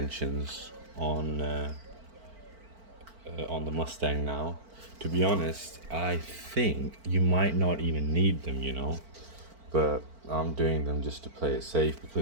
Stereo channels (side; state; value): left; late; 4.5 ms